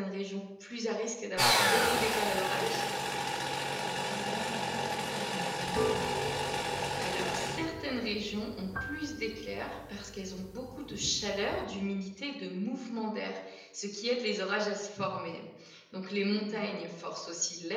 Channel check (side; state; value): both; identical; correlation 1.00